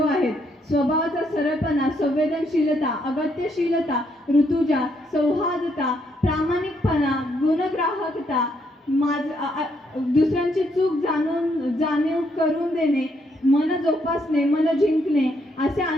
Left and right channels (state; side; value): normal; both; correlation 0.74